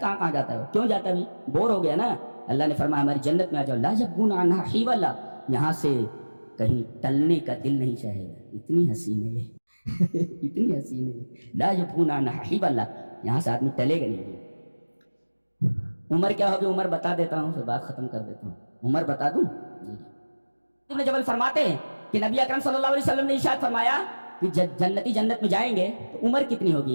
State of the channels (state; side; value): inverted; both; correlation -1.00